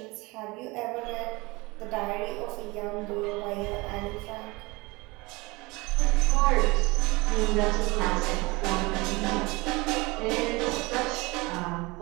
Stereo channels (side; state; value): left; quieter; 24.0 dB